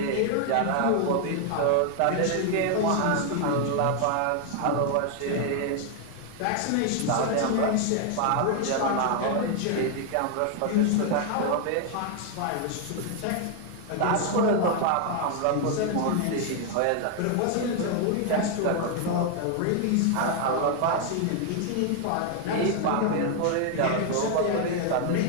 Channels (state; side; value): different; both; correlation 0.00